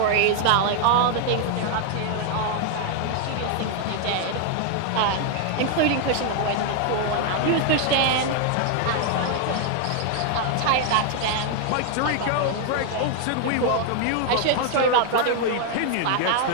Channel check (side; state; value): both; different; correlation 0.00